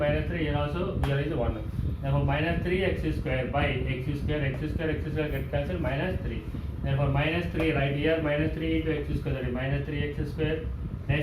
3, here also here is 1. Therefore minus 3x square by x square get cancelled, minus 3. Therefore minus 3 right here, minus 3 into x square, that is minus 3x square.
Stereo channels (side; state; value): both; identical; correlation 1.00